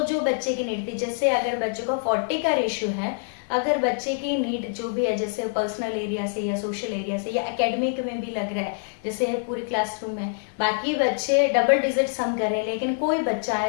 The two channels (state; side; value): silent; right; 62 dB below the other